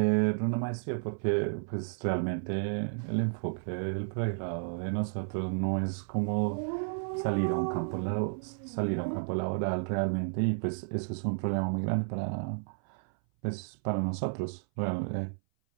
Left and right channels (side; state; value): left; silent; 56 dB below the other